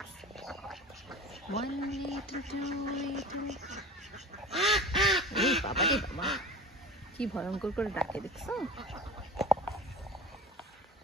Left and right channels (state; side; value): normal; both; correlation 0.33